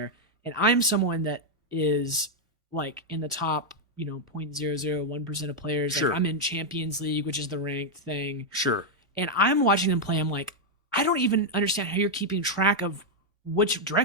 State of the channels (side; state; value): both; normal; correlation -0.01